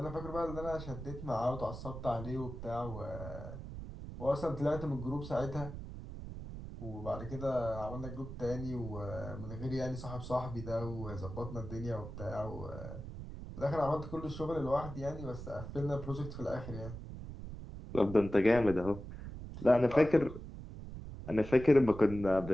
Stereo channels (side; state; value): right; noise; rumble, 10 dB below the sound